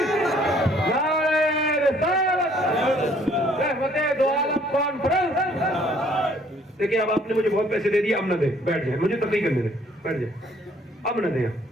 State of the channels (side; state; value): both; normal; correlation 0.61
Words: نعرہ رسالت, رحمت دو عالم کانفرنس. دیکھیں اب آپ نے مجھے بہت پیسے دے دیے, اب نہ دیں, بیٹھ جائیں, مجھے تقریر کرنے دیں, بیٹھ جائیں. اب نہ دیں,